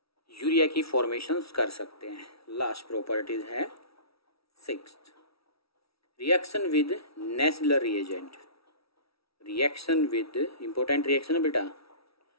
यूरिया की फॉर्मेशंस कर सकते हैं। लास्ट प्रॉपर्टीज है 6th, reaction with Nessler reagent, reaction with, important reaction है बेटा,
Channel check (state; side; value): late; right; 0.76 ms